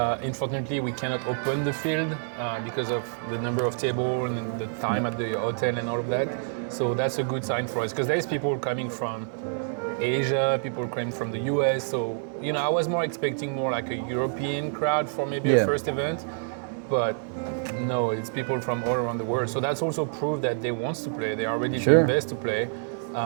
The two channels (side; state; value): left; silent; digital silence